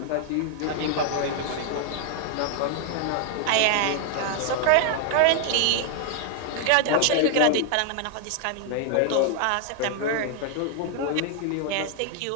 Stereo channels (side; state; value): both; different; correlation 0.00